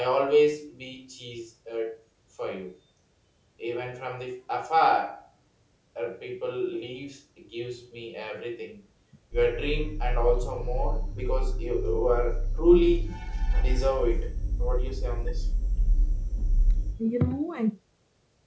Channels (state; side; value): identical; both; correlation 1.00